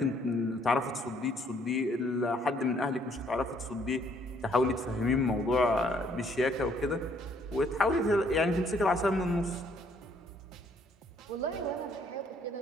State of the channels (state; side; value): normal; both; correlation 0.65